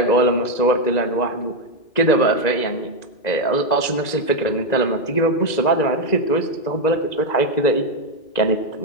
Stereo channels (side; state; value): right; late; 2.0 ms